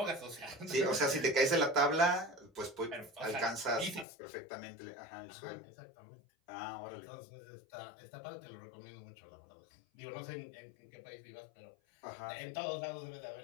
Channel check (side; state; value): right; drops out; at 4.0 s